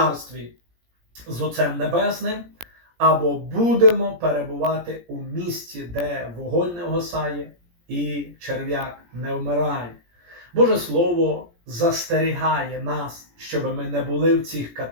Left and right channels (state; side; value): late; left; 17 ms